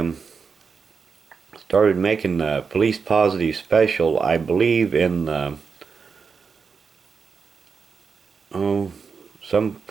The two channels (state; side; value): quieter; left; 5.5 dB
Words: started making the Police Positive Special, I believe, in the